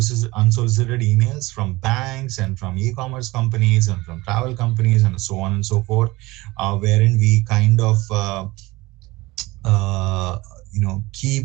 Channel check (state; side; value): quieter; left; 20.8 dB